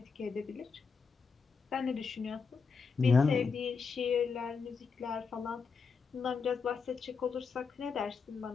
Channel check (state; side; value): quieter; right; 5.3 dB